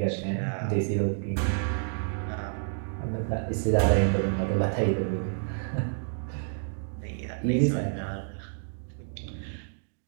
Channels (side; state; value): left; silent; digital silence